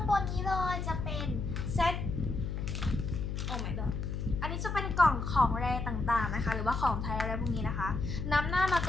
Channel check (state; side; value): noise; left; hum, 3 dB below the sound